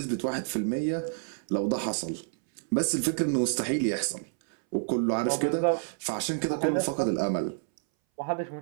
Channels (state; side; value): silent; left; 59 dB below the other